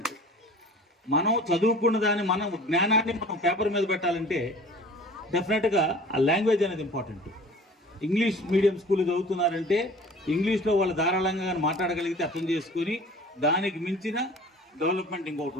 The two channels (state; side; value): normal; both; correlation 0.45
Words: మనం చదువుకున్న దాన్ని మనం జ్ఞానాన్ని మనం పేపర్ మీద పెట్టాలంటే డెఫినెట్గా ఆ లాంగ్వేజ్ అనేది ఇంపార్టెంట్. ఇంగ్లీష్ మీడియం స్కూల్ చదువుతున్నారంటే ఇంగ్లీష్లో వాళ్ళు ధారాళంగా మాట్లాడగలిగితే అర్థం చేసుకొని దానికి మించిన డెవలప్మెంట్ ఇంకొకటి